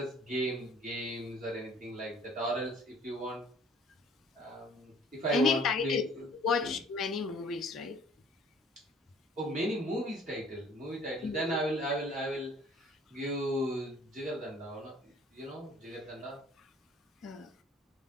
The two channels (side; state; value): both; normal; correlation 0.54